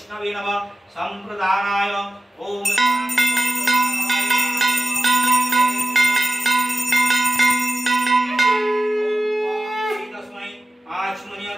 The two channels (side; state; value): both; normal; correlation 0.93